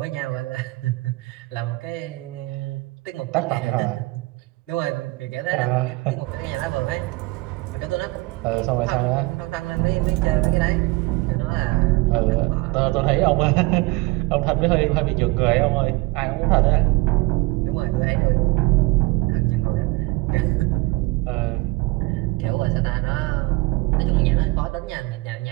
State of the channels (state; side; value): quieter; left; 23.2 dB